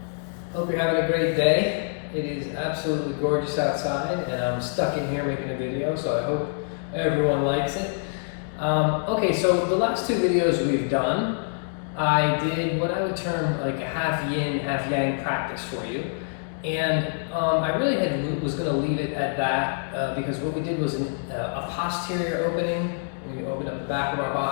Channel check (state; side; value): silent; right; digital silence